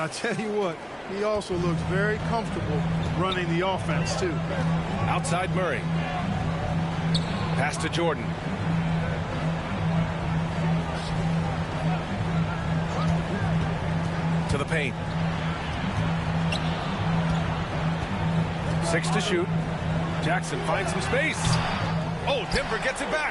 tell you what, he also looks very comfortable running the offense too. Outside Murray. Pass to Jordan. To the paint. 6 to shoot. Jackson finds some space. Oh, Denver gets it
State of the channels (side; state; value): both; identical; correlation 1.00